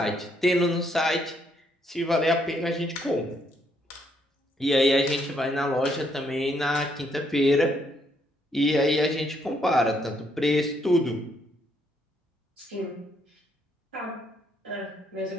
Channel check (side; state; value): both; normal; correlation 0.72